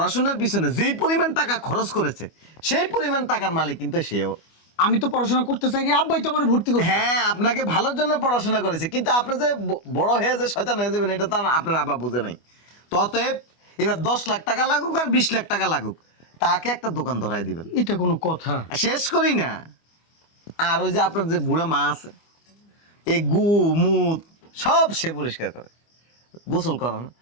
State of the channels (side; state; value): right; late; 25 ms